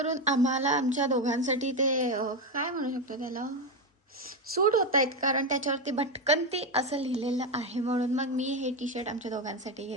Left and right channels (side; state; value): both; normal; correlation 0.11